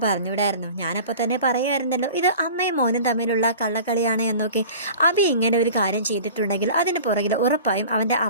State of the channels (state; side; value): inverted; both; correlation -0.40